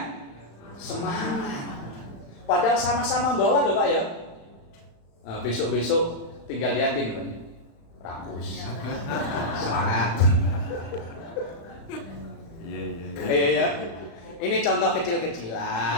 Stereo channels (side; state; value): right; late; 35 ms